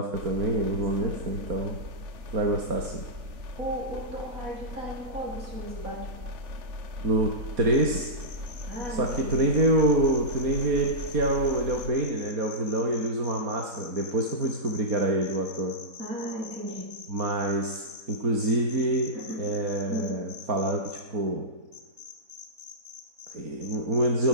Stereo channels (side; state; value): left; late; 4.0 ms